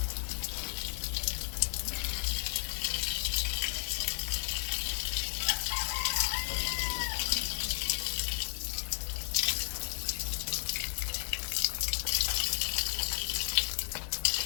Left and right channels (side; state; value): right; silent; 56 dB below the other